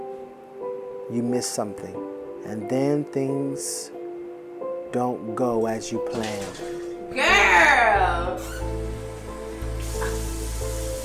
you miss something. And then things don't go as you planned. Girl!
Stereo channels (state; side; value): identical; both; correlation 1.00